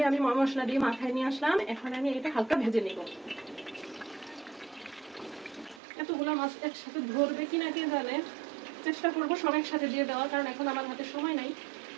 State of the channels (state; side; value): drops out; left; at 5.8 s